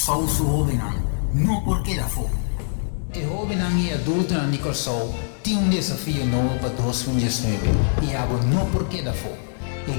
su jovenan não porque da fogo. A jovenan e adulto na Corsou tem desafio novo para 2019 e algo não porque da fogo. A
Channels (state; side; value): silent; right; digital silence